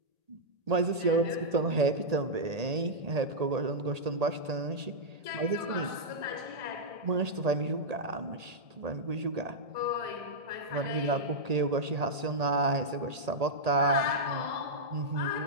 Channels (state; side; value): late; left; 1.8 ms